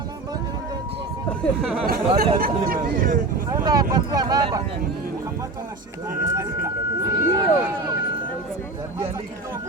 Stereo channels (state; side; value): quieter; left; 3.2 dB